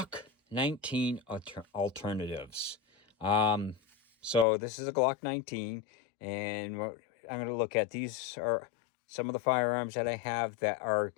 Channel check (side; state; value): right; drops out; at 4.5 s